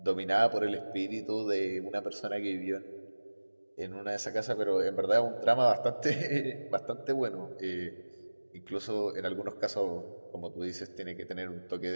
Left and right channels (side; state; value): both; inverted; correlation -1.00